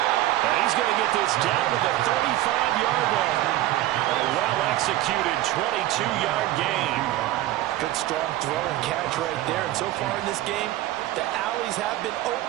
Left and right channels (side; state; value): left; quieter; 15.1 dB